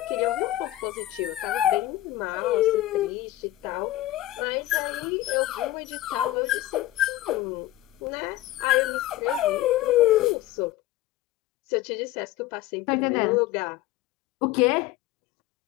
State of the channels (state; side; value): quieter; right; 15.1 dB